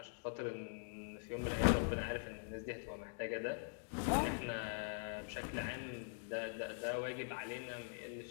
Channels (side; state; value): right; silent; digital silence